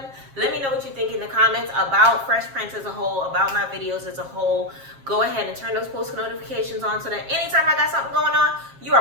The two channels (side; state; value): left; late; 7.4 ms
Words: Let me know what you think in the comments about Fresh Prince as a whole, about my videos as a whole. Go ahead and turn those post notifications on so that anytime I got something going on, you